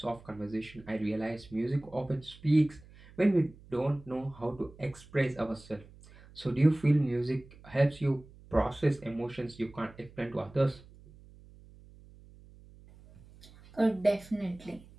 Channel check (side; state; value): right; noise; hum, 22 dB below the sound